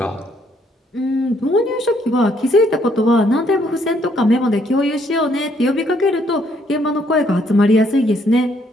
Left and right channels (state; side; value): normal; both; correlation 0.69